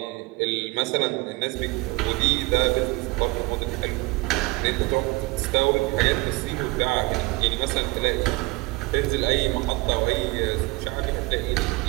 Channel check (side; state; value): left; quieter; 23.6 dB